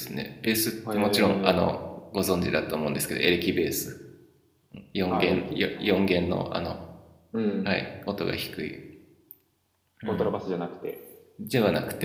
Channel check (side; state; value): both; identical; correlation 1.00